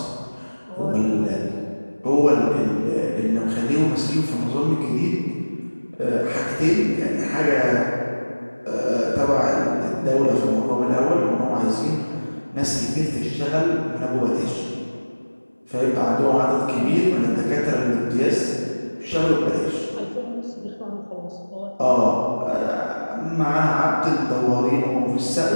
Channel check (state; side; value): inverted; both; correlation -1.00